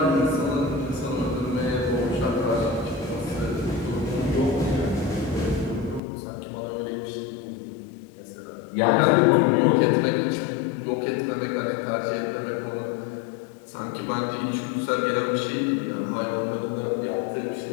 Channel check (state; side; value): drops out; right; at 6.0 s